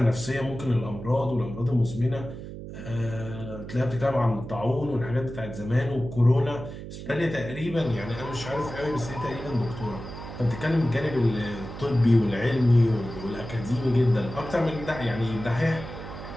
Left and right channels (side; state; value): right; noise; hum, 10 dB below the sound